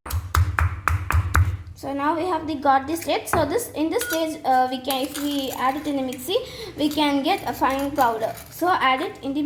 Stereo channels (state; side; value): identical; both; correlation 1.00